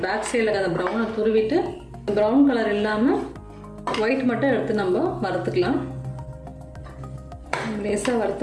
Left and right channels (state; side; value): identical; both; correlation 1.00